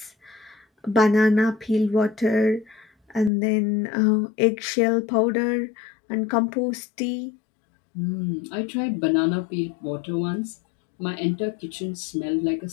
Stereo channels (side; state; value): right; drops out; at 3.3 s